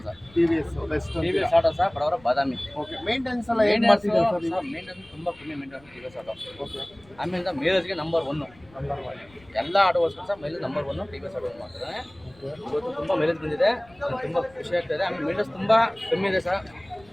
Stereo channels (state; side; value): noise; left; rumble, 27 dB below the sound